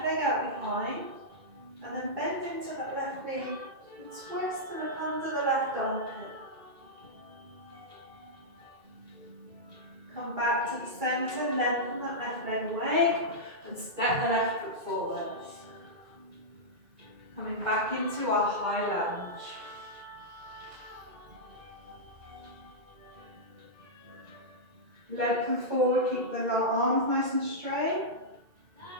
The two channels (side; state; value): left; late; 2.3 ms